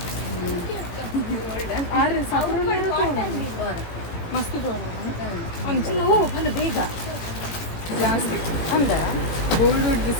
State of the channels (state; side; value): late; right; 18 ms